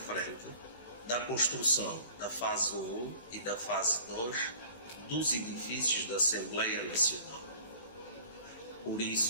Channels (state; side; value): inverted; both; correlation -0.48